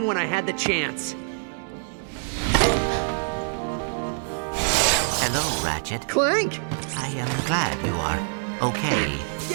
when I had the chance. Hello, Ratchet. Clank! I am glad you are okay.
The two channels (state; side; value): silent; left; digital silence